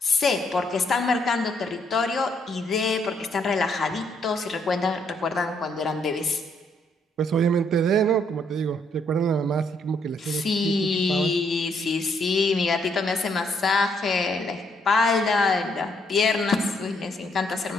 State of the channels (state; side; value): normal; both; correlation 0.71